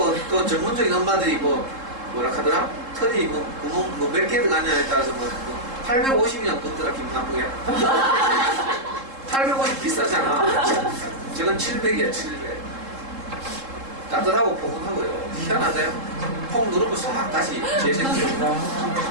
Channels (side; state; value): left; late; 3.7 ms